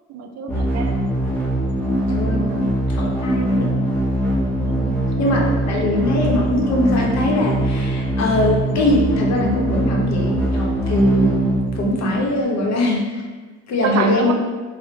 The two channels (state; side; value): normal; both; correlation 0.53